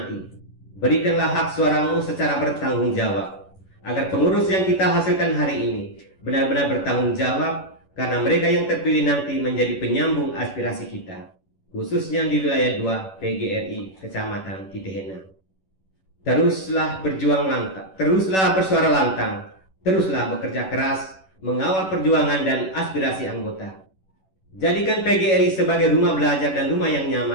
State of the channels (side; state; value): right; late; 11 ms